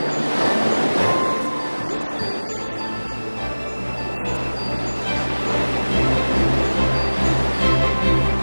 mean that she actually... I saw you and her in the swimming pool. She hasn't looked that happy in forever.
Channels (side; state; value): both; inverted; correlation -1.00